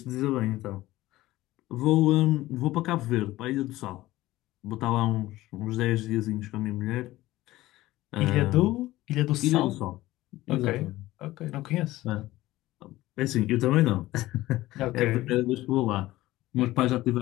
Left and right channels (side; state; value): right; quieter; 17.0 dB